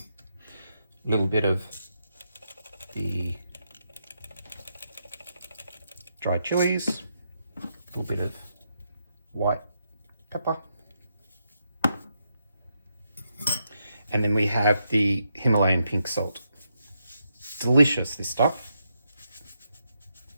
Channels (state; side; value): inverted; both; correlation -0.81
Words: little bit of the dried chilies, a little bit of white pepper, and then we have the Himalayan pink salt. Delicious, this stuff.